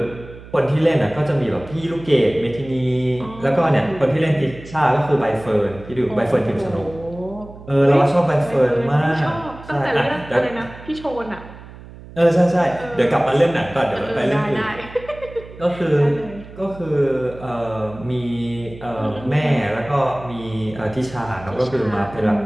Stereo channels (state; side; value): noise; right; hum, 17 dB below the sound